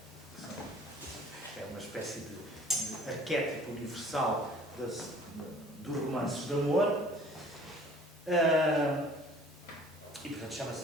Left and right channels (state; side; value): normal; both; correlation 0.51